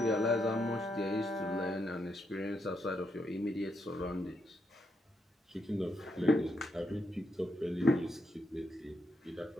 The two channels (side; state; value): both; normal; correlation 0.80